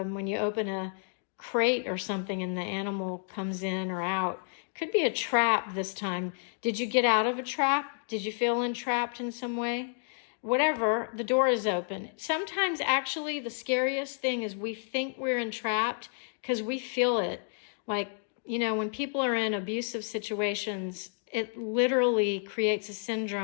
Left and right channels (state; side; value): silent; right; digital silence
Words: you open a crate or something and the animal comes in or out. Could be a trap this time. Did you get out of a trap? Did you feel entrapped in some way? Whatever, the door is open. Sometimes actually the scariest thing is we think we're entrapped because we feel it. Like, you know, when people are in abusive situations, it literally creates a